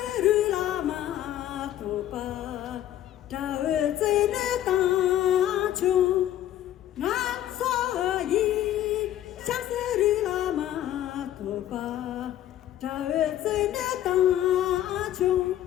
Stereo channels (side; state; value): right; quieter; 12.3 dB